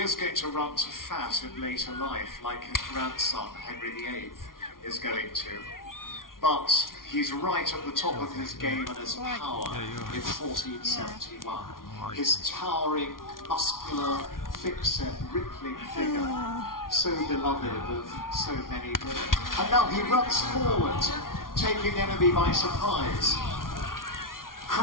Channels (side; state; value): right; late; 0.91 ms